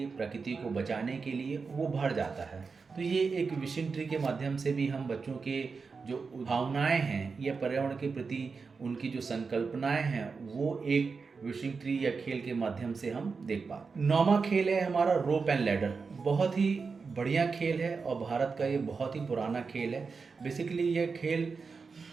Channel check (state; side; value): quieter; left; 4.9 dB